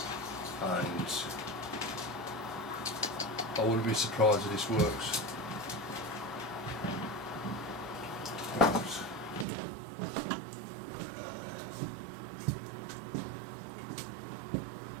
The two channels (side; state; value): left; drops out; at 9.5 s